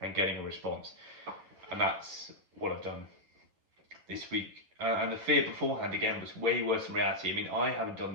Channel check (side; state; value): left; late; 10 ms